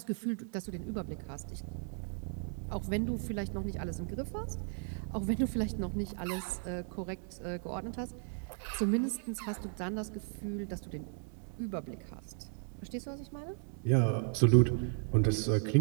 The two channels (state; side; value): silent; left; 54 dB below the other